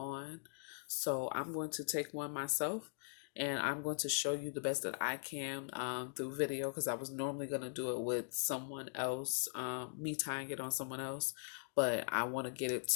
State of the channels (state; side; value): silent; right; digital silence